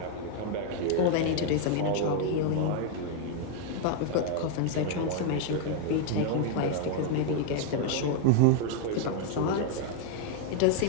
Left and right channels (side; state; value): both; different; correlation 0.00